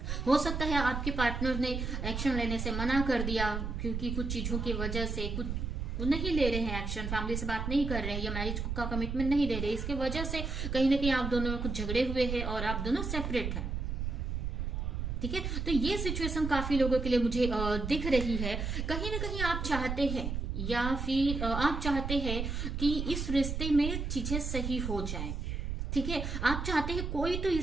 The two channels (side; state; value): right; noise; rumble, 3 dB below the sound